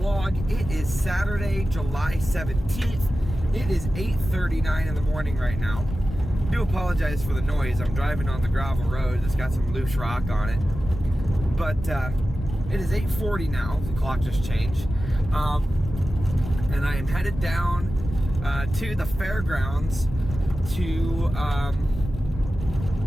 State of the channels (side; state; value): left; noise; rumble, 8 dB below the sound